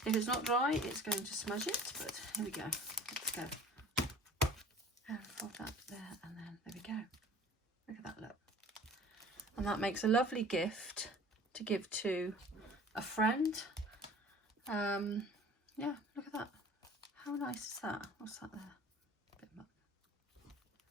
If it's not dry, it's going to smudge it, but here we go. Let's go. And fold that there, and then there we go. Look at that look. And that makes a lovely gift to give to a friend. Yeah, look at that. How nice is that? What's that there? A bit much.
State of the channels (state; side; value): normal; both; correlation 0.47